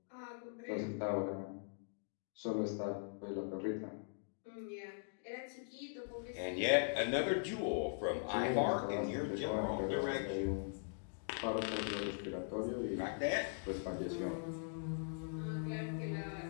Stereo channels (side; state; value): right; silent; digital silence